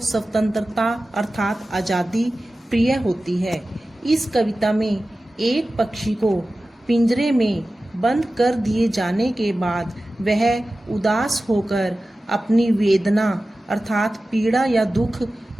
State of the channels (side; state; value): both; normal; correlation 0.95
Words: स्वतंत्रता अर्थात आज़ादी प्रिय होती है। इस कविता में एक पक्षी को पिंजरे में बंद कर दिए जाने के बाद वह उदास होकर अपनी वेदना अर्थात पीड़ा या दुख